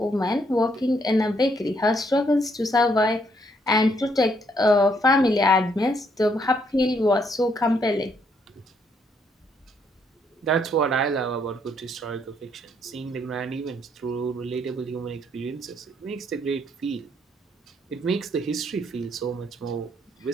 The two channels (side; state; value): both; normal; correlation 0.71